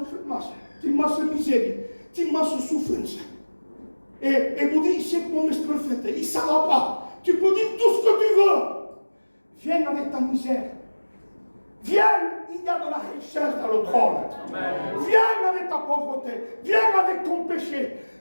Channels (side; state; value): both; inverted; correlation -1.00